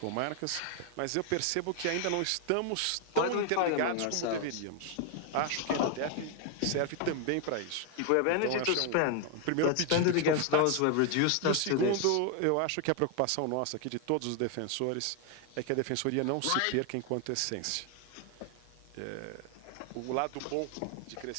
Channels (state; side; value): different; both; correlation 0.00